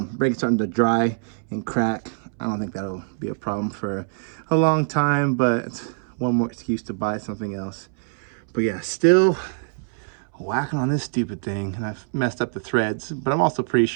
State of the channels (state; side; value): silent; left; 63 dB below the other